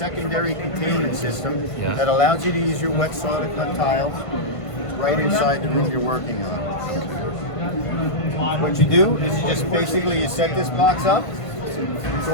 containment system Yeah. that allows you to use your wet saw to cut tile right inside the room you're working on. What you do is you just basically you set this box up. It's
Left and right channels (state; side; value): late; right; 1.5 ms